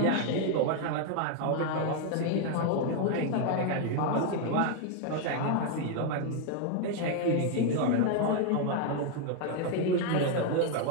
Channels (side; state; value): both; different; correlation 0.01